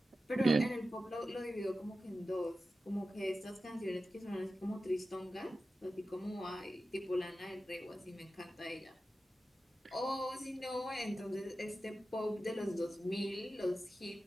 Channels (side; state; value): both; normal; correlation 0.93